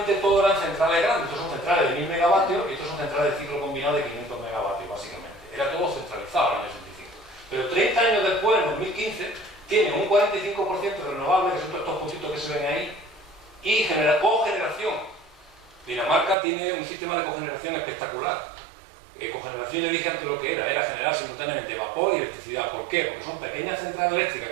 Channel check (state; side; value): drops out; left; at 16.4 s